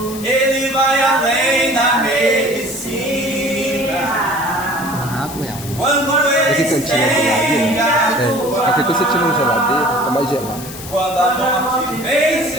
ele vai além da medicina, quando ele estende a tua mão, aqui você tira uma geladeira, é mais gelado. quando a morte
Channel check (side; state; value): left; noise; hiss, 13 dB below the sound